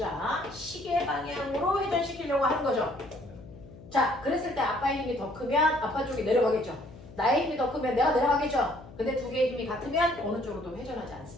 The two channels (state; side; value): noise; left; hum, 18 dB below the sound